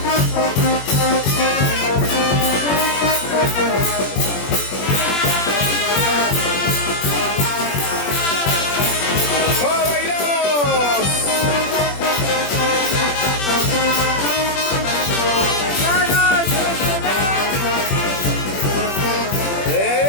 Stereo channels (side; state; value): right; late; 21 ms